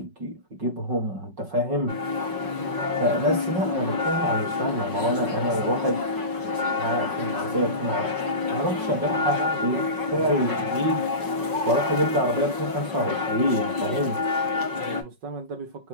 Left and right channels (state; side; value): late; left; 5.4 ms